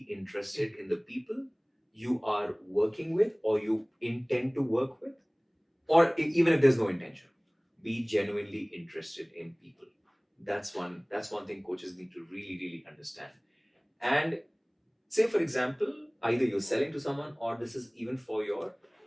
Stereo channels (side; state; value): both; identical; correlation 1.00